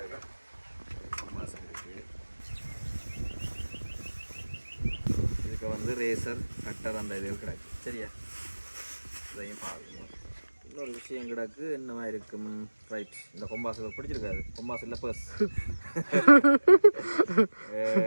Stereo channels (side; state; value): both; inverted; correlation -1.00